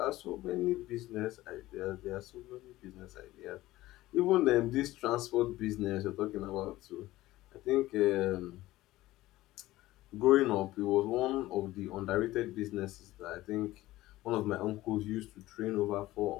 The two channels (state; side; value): quieter; right; 16.9 dB